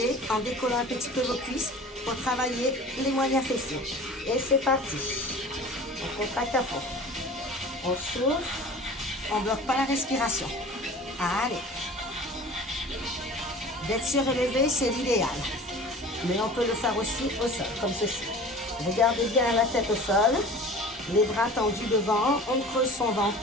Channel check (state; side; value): normal; both; correlation 0.41